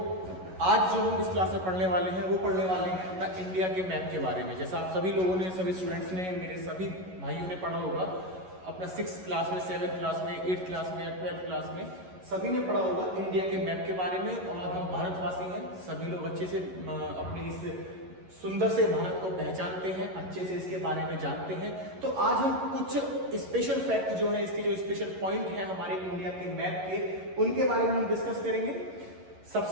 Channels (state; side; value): late; left; 11 ms